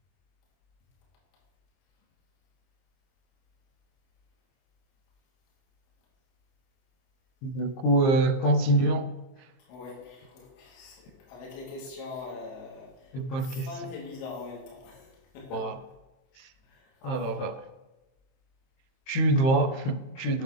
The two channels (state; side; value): late; right; 23 ms